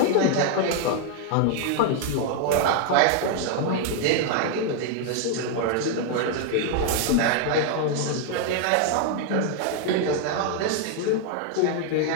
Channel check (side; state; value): both; different; correlation 0.00